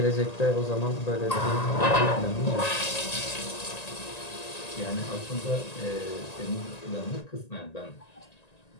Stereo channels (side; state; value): right; late; 1.9 ms